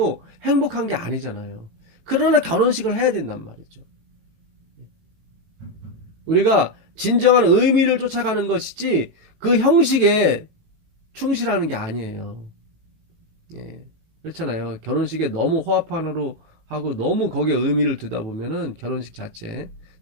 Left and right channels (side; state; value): left; late; 18 ms